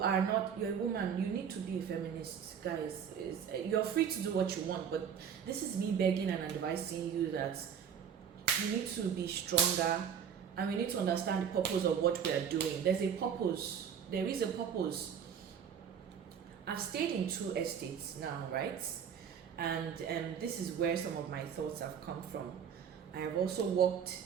a woman, you need to be a feminist. Guys, you're free to do what you want, but this is me begging and advising you that you need to be stronger, and we need to understand the purpose of what we are doing. There's a purpose. There is a purpose. I've stayed in 2 estates now, right? And this is where some of my thoughts have come from. I have also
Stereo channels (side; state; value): left; quieter; 7.8 dB